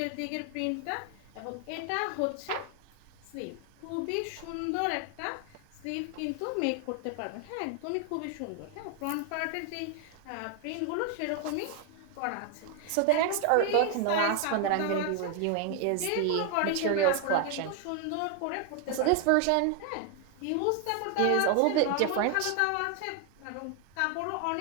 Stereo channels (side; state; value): both; different; correlation 0.00